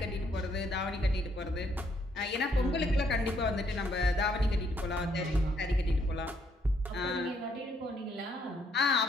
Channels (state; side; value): normal; both; correlation 0.70